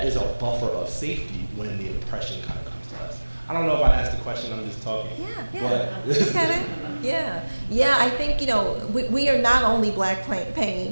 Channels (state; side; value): inverted; both; correlation -1.00